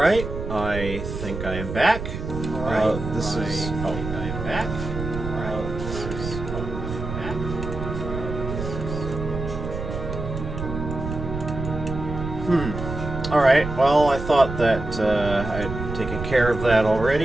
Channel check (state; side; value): noise; right; rumble, 7 dB below the sound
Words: I think I am back. Alright, this is... Oh, I am back. Alright, well, I thought that I'd taken care of that